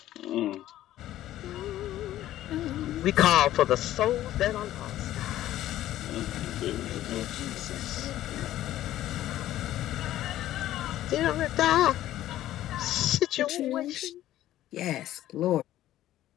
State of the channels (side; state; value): right; quieter; 13.6 dB